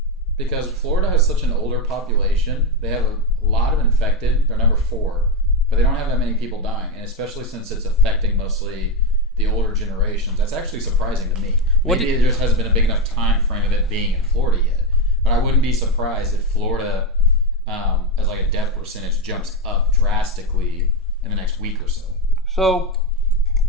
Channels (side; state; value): both; normal; correlation 0.10